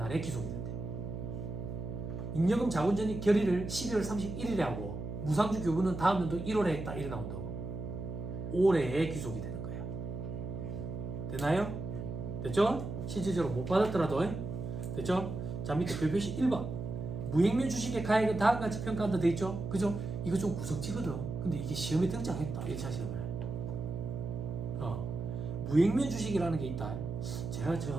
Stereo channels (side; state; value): right; noise; hum, 6 dB below the sound